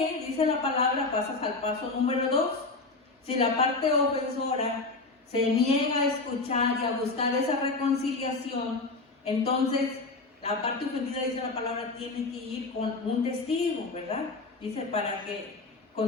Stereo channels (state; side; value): quieter; right; 3.5 dB